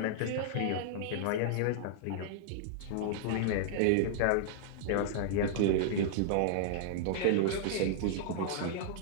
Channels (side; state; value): both; different; correlation -0.01